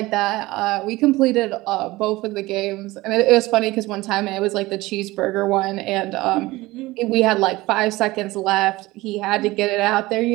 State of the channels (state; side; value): quieter; left; 19.6 dB